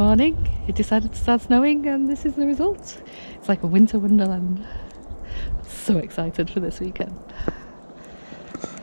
it decided to start snowing and this is the result. It's like a winter wonderland. So excited for this weekend.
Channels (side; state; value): both; inverted; correlation -1.00